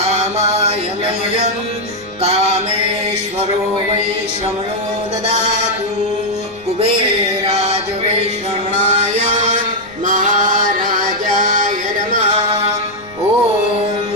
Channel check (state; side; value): noise; left; rumble, 26 dB below the sound